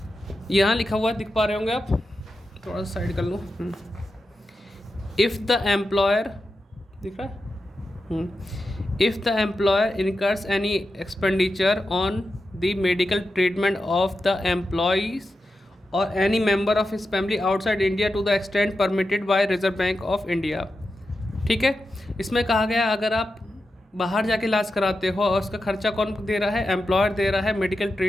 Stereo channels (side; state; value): both; normal; correlation 0.90